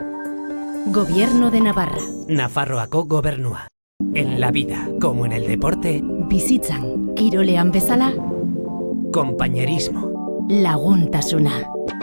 Gobierno de Navarra, Nafarroako gobernua. En la vida, como en el deporte, bizitzan, kirolean bezala, compañerismo, laguntasuna,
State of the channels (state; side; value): inverted; both; correlation -1.00